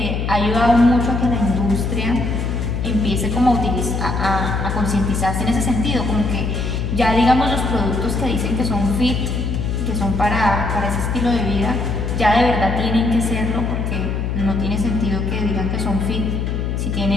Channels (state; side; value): noise; left; hum, 1 dB below the sound